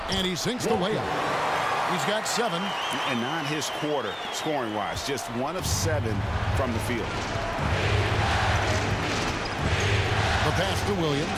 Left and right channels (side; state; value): both; identical; correlation 1.00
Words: and he sinks the layup. He's got 7. And not his quarter, scoring-wise. Just 1 of 7 from the field. The pass to